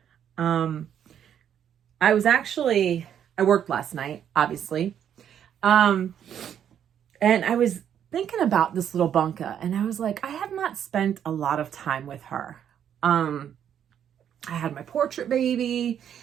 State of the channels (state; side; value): quieter; left; 9.2 dB